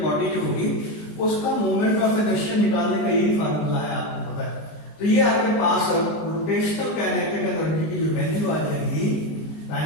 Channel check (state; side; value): late; right; 19 ms